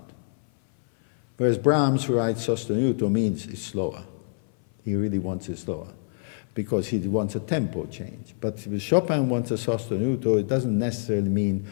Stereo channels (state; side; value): silent; right; 57 dB below the other